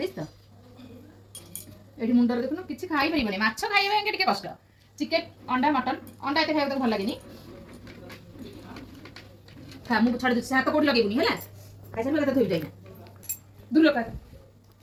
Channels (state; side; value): identical; both; correlation 1.00